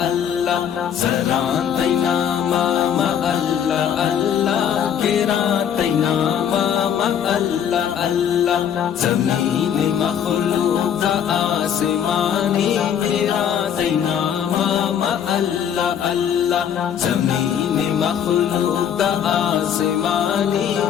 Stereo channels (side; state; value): right; quieter; 8.8 dB